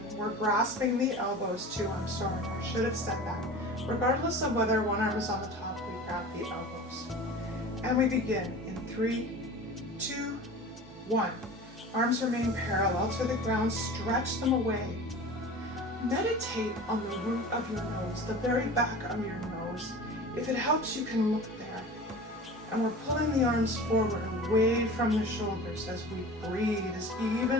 We're grasping the elbows too. I'm sorry, I should have said that. Regardless of whether one arm is on the top, we grab the elbows. And we begin in 3, 2, 1. Arms remain parallel to the ground. Stretch them away. Meditate on the root of your nose, the very back of your nose. If it helps, you can look there. And we're pulling the arms forward, away from the shoulders as we breathe as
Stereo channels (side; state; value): both; normal; correlation 0.37